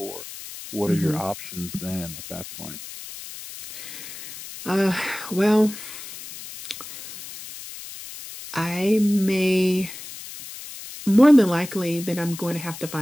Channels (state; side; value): noise; left; hiss, 12 dB below the sound